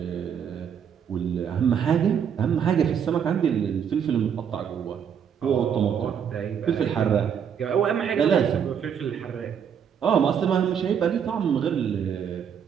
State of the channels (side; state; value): left; quieter; 7.9 dB